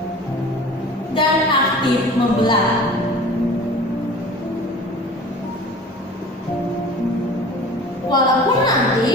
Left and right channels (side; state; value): both; normal; correlation 0.41